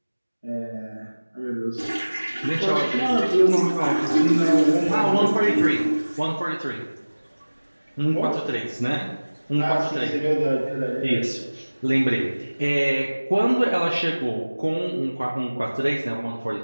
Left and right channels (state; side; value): inverted; both; correlation -1.00